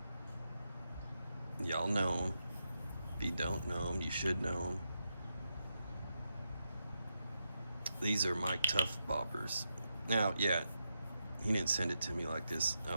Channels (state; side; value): inverted; both; correlation -0.84